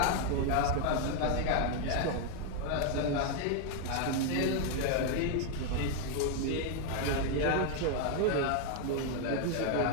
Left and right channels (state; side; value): different; both; correlation 0.00